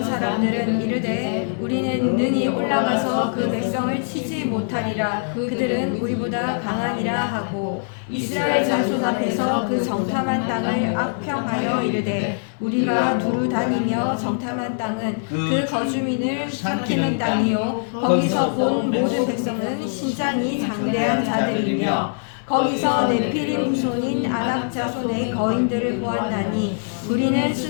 사람들은 이르되 우리는 능히 올라가서 그 백성을 치지 못하리라. 그들은 우리보다 강하니라 하고 이스라엘 자손 앞에서 그 정탐한 땅을 악평하여 이르되 우리가 두루 다니며 정탐한 땅은 그 거주민을 삼키는 땅이요 거기서 본 모든 백성은 신장이 장대한 자들이며 거기서 네피림 후손인 아낙 자손의 거인들을 보았나니 우리는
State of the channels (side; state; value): right; silent; 63 dB below the other